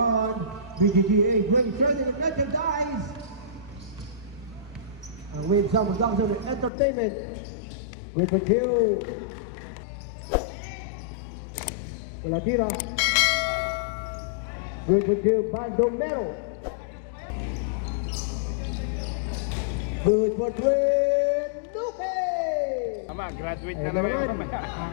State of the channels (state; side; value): drops out; right; at 6.7 s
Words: BGGA, Great Trading Merchandise. And with some production entertainment, with the two. Latira. With the two Bandomero. Good for twin. Duque. Graduate Ayun na naman.